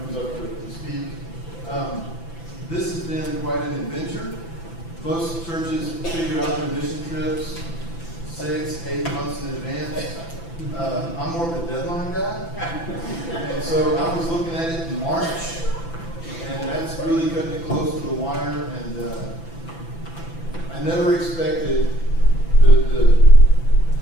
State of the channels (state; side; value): late; right; 6.0 ms